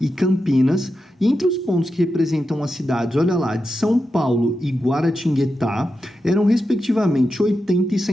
Campinas, e entre os pontos que representam as cidades, olha lá, de São Paulo e Guaratinguetá, eram respectivamente 80 e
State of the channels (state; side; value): normal; both; correlation 0.89